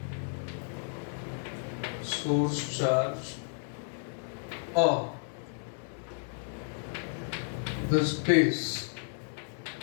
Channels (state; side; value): silent; right; 56 dB below the other